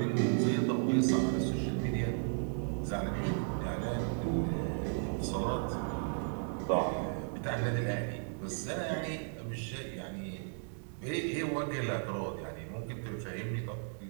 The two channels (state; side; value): silent; left; 54 dB below the other